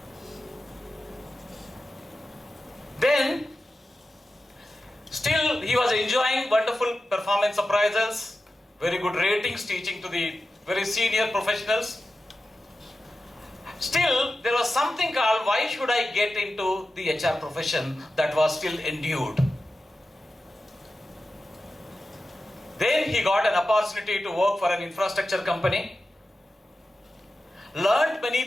Then, still he was enjoying wonderful performance appraisals, very good ratings, teaching to the very senior professionals. Still, there was something called, why should I get into the HR profession, that was still endued. Then he got an opportunity to work for an infrastructure company, learned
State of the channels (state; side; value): normal; both; correlation 0.92